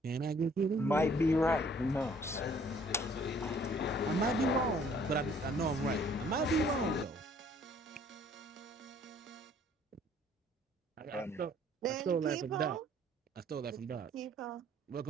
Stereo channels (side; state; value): both; normal; correlation 0.58